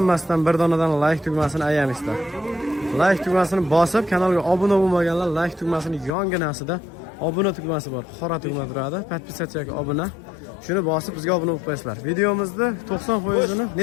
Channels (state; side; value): drops out; right; at 6.1 s